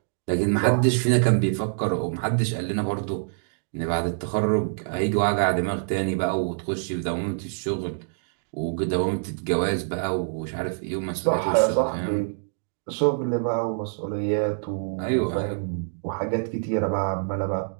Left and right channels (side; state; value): left; silent; digital silence